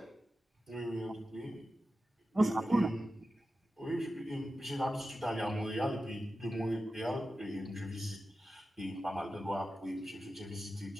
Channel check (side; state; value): both; normal; correlation 0.93